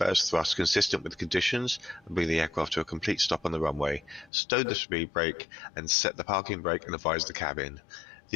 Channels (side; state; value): right; drops out; at 4.3 s